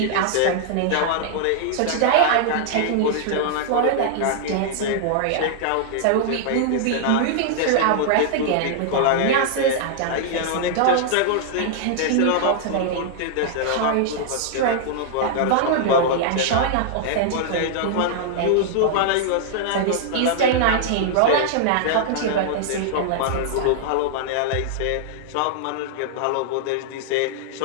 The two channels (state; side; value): different; both; correlation -0.01